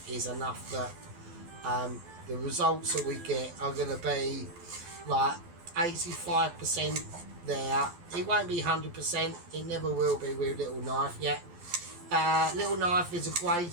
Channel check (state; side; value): late; left; 12 ms